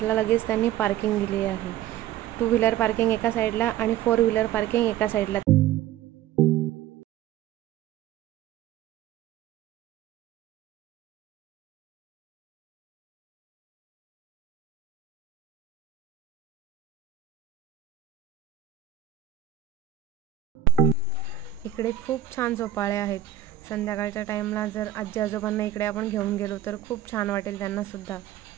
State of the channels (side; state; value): left; quieter; 11.4 dB